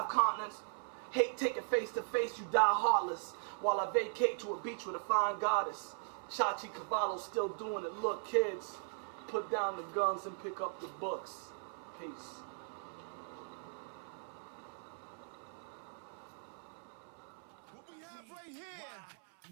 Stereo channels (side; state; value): left; silent; 52 dB below the other